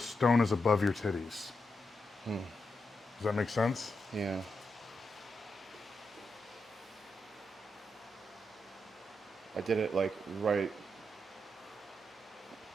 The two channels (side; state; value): both; normal; correlation 0.85